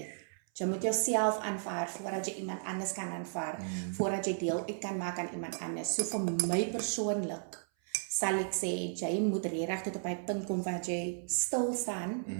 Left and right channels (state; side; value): silent; left; 55 dB below the other